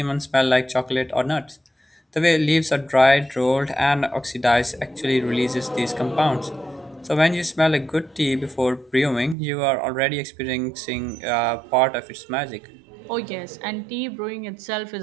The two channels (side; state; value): left; drops out; at 9.3 s